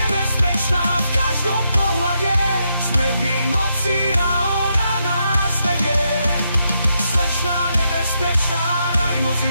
v každom pohľade sme v jej moci a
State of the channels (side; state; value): both; inverted; correlation -0.81